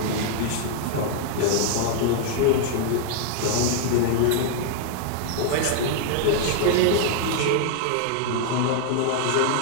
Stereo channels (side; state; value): both; different; correlation 0.00